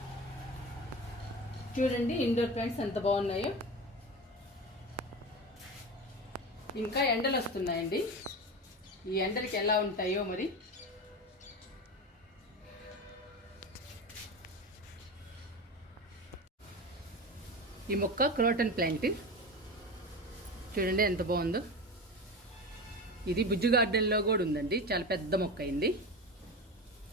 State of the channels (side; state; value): both; normal; correlation 0.26